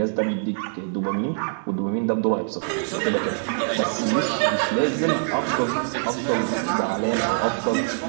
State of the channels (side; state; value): left; silent; digital silence